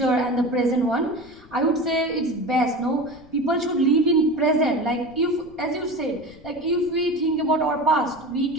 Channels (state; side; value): noise; left; rumble, 24 dB below the sound